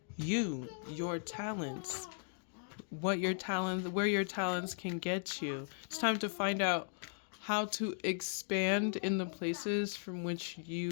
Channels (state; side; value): silent; right; digital silence